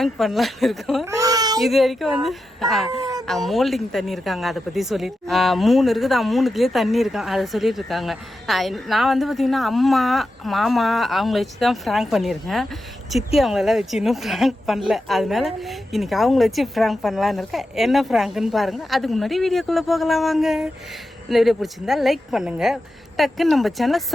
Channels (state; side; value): normal; both; correlation 0.89